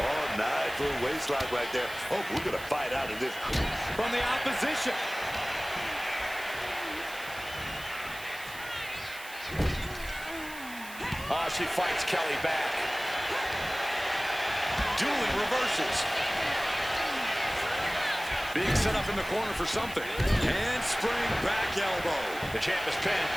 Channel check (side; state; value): right; noise; hiss, 15 dB below the sound